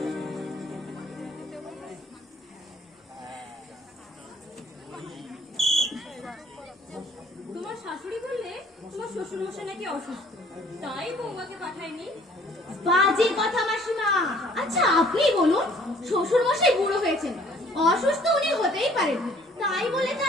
তোমার শাশুড়ি বললে তোমার শ্বশুর মশাই নাকি অসুস্থ, তাই বৌমাকে পাঠায়নি। বাজে কথা মাসিমা। আচ্ছা আপনি বলুন, শ্বশুর মশাই বুড়ো হয়েছেন, অসুস্থ উনি হতেই পারেন, তাই বলে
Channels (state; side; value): normal; both; correlation 0.57